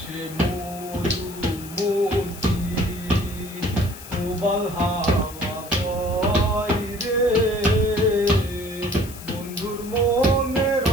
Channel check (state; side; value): noise; left; hiss, 16 dB below the sound